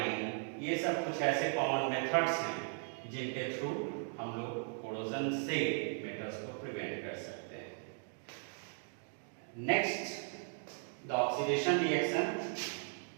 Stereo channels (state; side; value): silent; left; 53 dB below the other